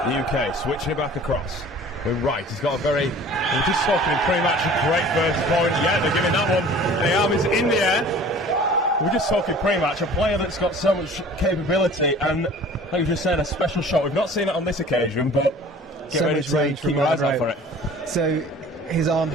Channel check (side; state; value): both; normal; correlation 0.46